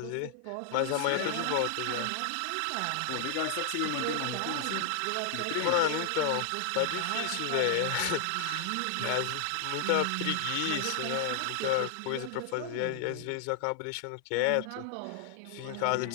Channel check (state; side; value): different; both; correlation 0.00